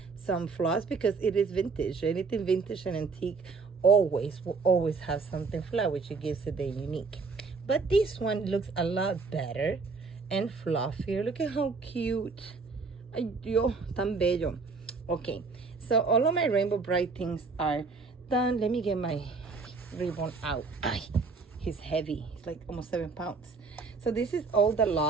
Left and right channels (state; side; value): quieter; left; 4.4 dB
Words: some flaws, because it is vintage. Anything vintage and antique always will always have something flaw, which it gives it the unique. But this one looks a lot better and fluffier. Look at how cute. Ay, Dios, tan bello. Okay, so all of my Rainbow Bright things are done. Let me get my ribbon out. Ay, he's heavy. He's like almost 7 pounds. So this is all the